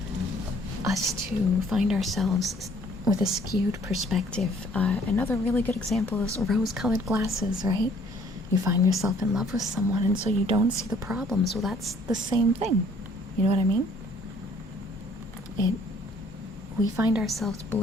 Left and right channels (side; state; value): both; normal; correlation 0.59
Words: us to find ourselves with a skewed perspective. Another really good example is rose-colored glasses, right? You find yourself in love with someone, and so you don't see the problems. Well, that's the same thing. You know what I mean? We find ourselves